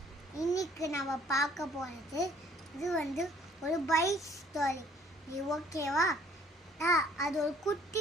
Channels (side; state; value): both; normal; correlation 0.59